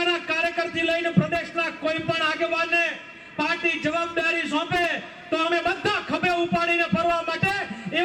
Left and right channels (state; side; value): identical; both; correlation 1.00